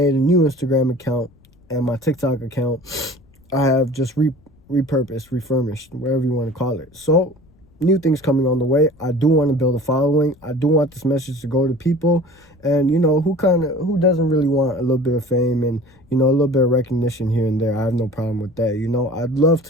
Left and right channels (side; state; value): left; noise; rumble, 30 dB below the sound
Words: a new Instagram account, and my TikTok account I have just repurposed, refurbished, whatever you want to call it. So new things coming on the way. I do want to build a following. I do want this message to go to people, and you know, who doesn't really want a little bit of fame and, you know, a little bit of recognition here and there. I have no problem with that. You know, I'd love